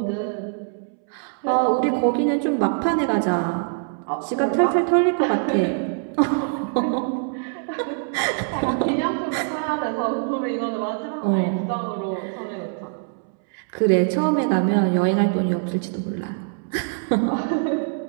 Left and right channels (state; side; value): silent; left; 63 dB below the other